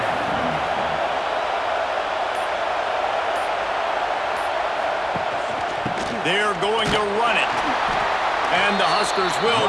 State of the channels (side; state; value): both; identical; correlation 1.00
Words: They're going to run it. And the Huskers